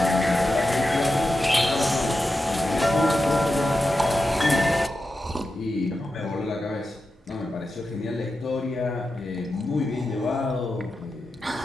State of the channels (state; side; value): normal; both; correlation 0.90